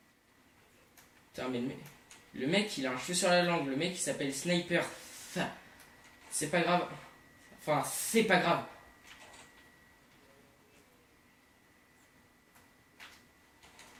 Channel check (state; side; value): identical; both; correlation 1.00